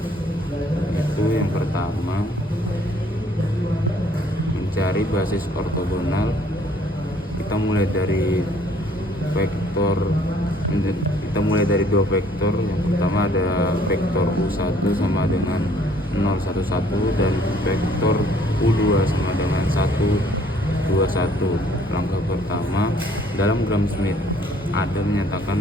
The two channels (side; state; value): both; normal; correlation 0.60